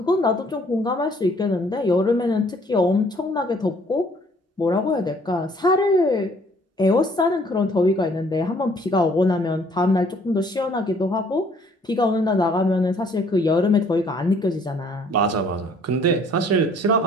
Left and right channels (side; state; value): both; normal; correlation 0.60